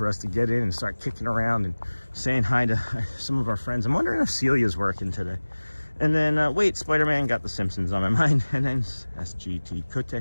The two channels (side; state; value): both; inverted; correlation -1.00